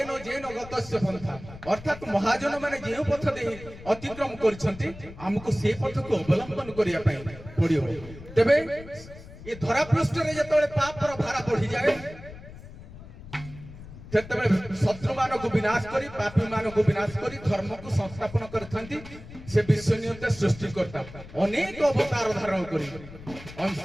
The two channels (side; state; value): left; noise; rumble, 16 dB below the sound